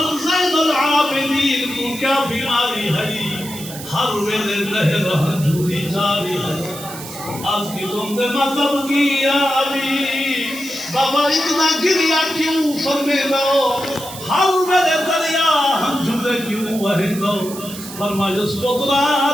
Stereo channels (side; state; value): right; noise; hiss, 12 dB below the sound